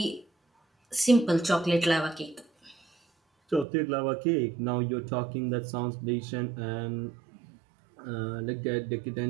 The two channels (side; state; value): left; drops out; at 3.7 s